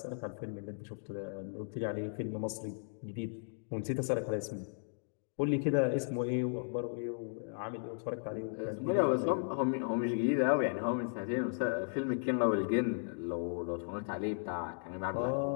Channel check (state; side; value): silent; right; digital silence